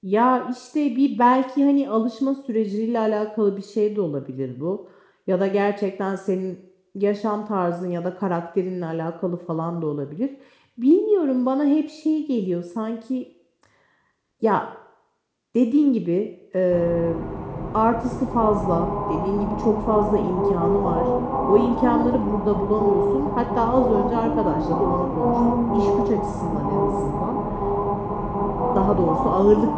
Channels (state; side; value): identical; both; correlation 1.00